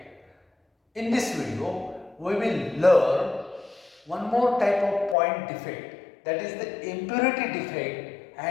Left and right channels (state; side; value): drops out; right; at 5.2 s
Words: In this video we will learn one more type of point defect, that is the impurity defect